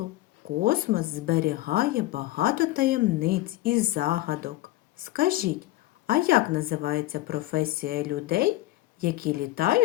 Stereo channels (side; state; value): right; quieter; 17.1 dB